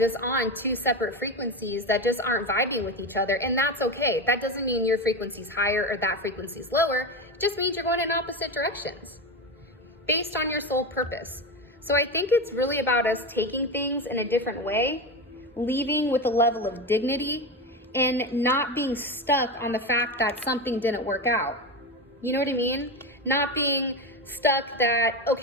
on two separate frequencies that just aren't vibing with each other, and that's okay. That doesn't mean your frequency's higher or that frequency's lower. It just means you're going in opposite directions based on your soul purpose. So I think it's really about us taking things in a different way, leaving with a level of dignity, and not being stuck on the fact that something didn't work out. You know what I mean? Not being stuck that,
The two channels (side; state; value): both; normal; correlation 0.19